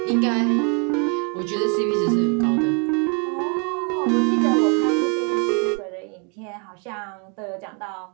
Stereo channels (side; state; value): left; quieter; 37.0 dB